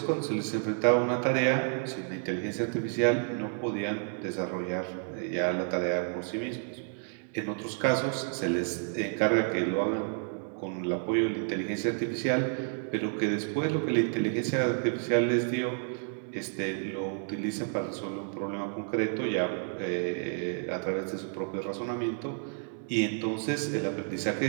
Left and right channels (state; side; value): silent; left; 56 dB below the other